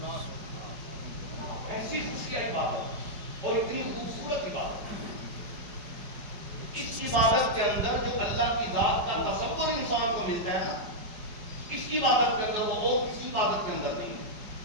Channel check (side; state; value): left; late; 5.5 ms